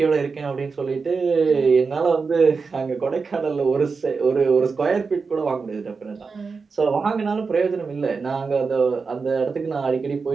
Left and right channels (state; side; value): quieter; left; 4.8 dB